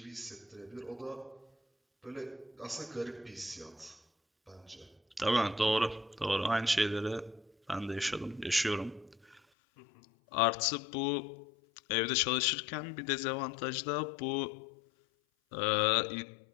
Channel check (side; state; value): right; drops out; at 9.4 s